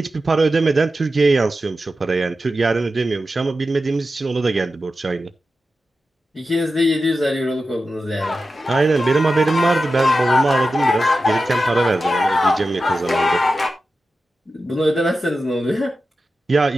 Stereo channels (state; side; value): normal; both; correlation 0.92